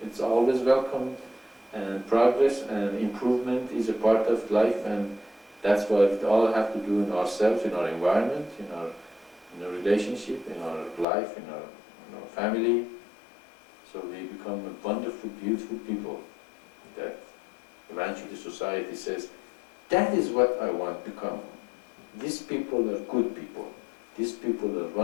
it's always welcome. And progress and improvement is a part of life, and that's what we all have to do in ourselves, in our environment, in our relationship, in our life, in our family. So we become a wonderful, beautiful people that eventually society says, that is what I want to become. These people are good people. These people are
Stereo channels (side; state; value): right; drops out; at 11.1 s